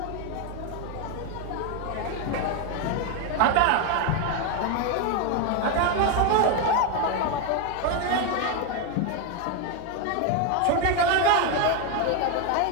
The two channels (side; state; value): both; different; correlation 0.01